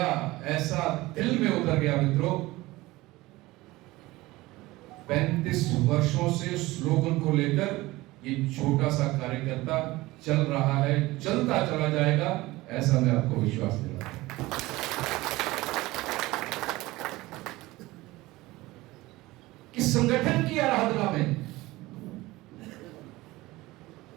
ऐसा दिल में उतर गया मित्रों। 35 वर्षों से स्लोगन को लेकर ये छोटा सा कार्यकर्ता चल रहा है, चलता चला जाएगा, ऐसा मैं आपको विश्वास दिलाता हूं। कि संगठन की आराधना में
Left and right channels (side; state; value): left; quieter; 19.5 dB